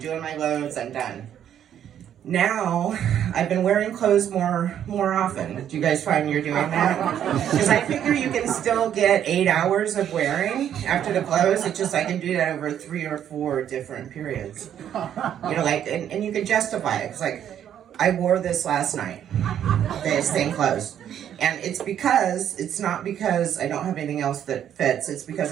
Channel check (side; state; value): left; quieter; 9.9 dB